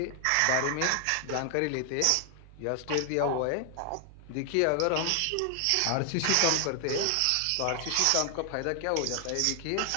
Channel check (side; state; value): both; different; correlation 0.00